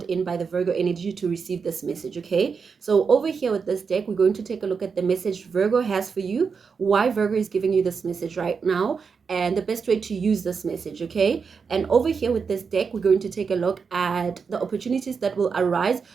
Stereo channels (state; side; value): quieter; left; 5.6 dB